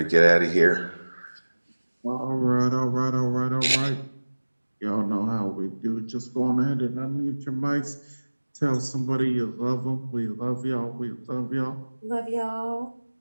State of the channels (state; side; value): inverted; both; correlation -1.00